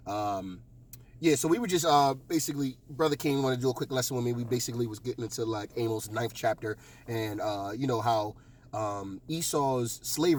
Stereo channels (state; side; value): identical; both; correlation 1.00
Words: Yeah, so we were just basically, Brother King wanted to do a quick lesson with me. We basically was getting into like Amos' 9th chapter and how Esau's